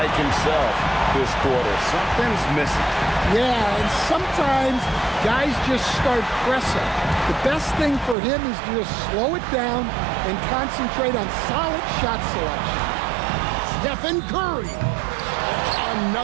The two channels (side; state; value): left; drops out; at 8.2 s